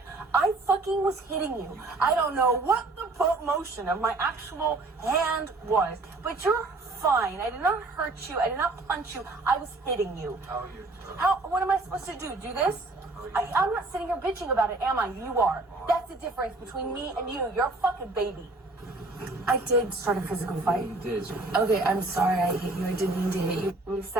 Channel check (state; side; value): quieter; left; 3.1 dB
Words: I fucking was hitting you. I don't know what the motion of my actual hand was, but you're fine. I did not hurt you. I did not punch you. I was hitting you. What am I supposed to do? Do this? I'm not sitting here bitching about it, am I? You are. That's the difference between me and you. You're a fucking baby. I did start a physical fight. You did. Okay, I'm sorry I hit you. I didn't mean to hit you. And you